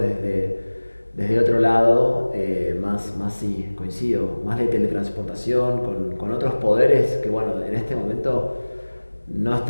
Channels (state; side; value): inverted; both; correlation -1.00